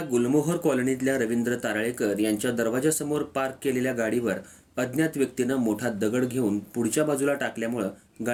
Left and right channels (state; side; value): identical; both; correlation 1.00